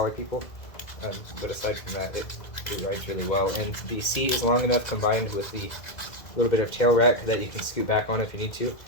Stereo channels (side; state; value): right; late; 2.0 ms